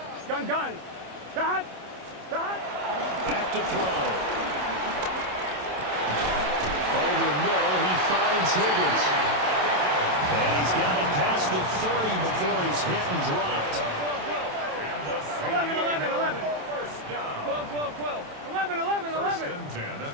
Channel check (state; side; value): late; left; 27 ms